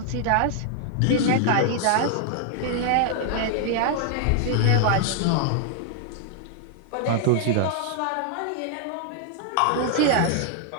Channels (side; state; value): both; different; correlation -0.01